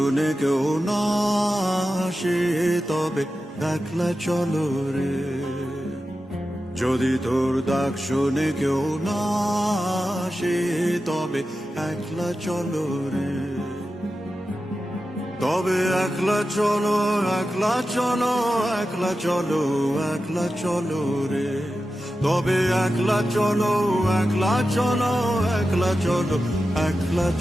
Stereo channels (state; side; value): normal; both; correlation 0.92